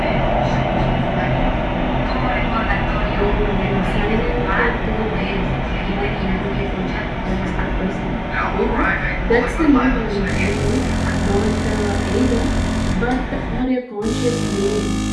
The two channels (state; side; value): identical; both; correlation 1.00